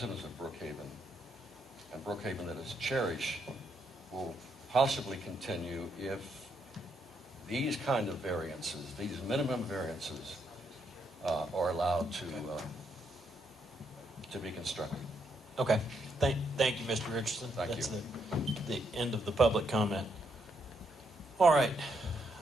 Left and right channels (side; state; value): both; normal; correlation 0.77